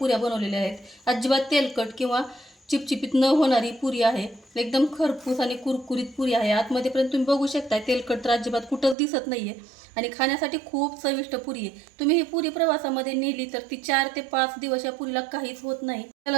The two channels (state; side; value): drops out; left; at 9.0 s